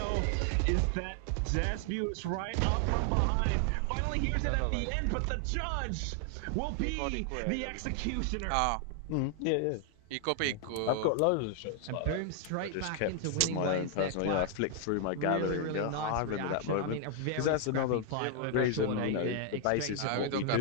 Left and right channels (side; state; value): both; different; correlation 0.00